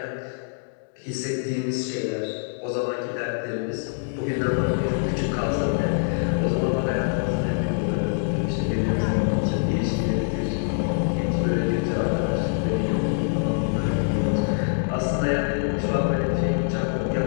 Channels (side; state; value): right; silent; digital silence